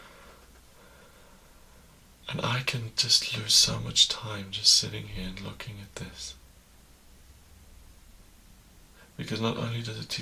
And I can just lose so much time just sitting here and looking at this. Because not only does it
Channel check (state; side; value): identical; both; correlation 1.00